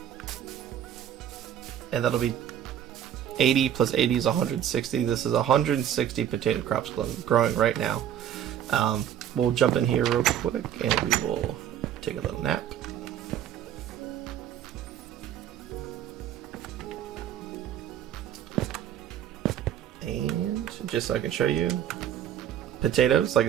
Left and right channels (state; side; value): quieter; left; 10.3 dB